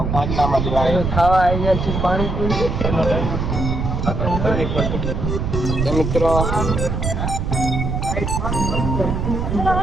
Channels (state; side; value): noise; right; rumble, 1 dB below the sound